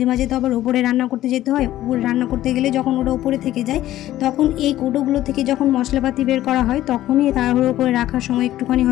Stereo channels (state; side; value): quieter; right; 14.1 dB